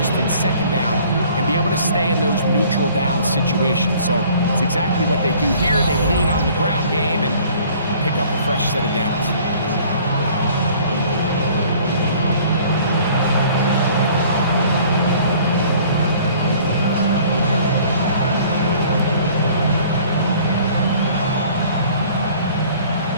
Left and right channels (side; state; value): both; inverted; correlation -0.53